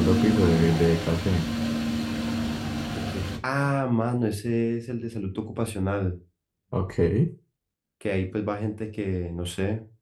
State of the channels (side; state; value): both; identical; correlation 1.00